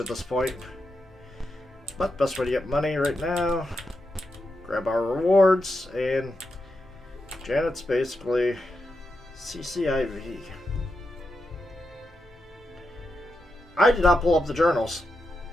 at this point. But best way to get money right now, grab our rewards, and Janet's basically CCIV. I did not pull up the journals.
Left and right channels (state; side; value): normal; both; correlation 0.86